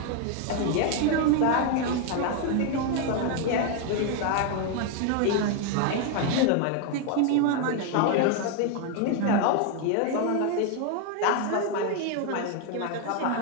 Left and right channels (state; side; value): different; both; correlation 0.01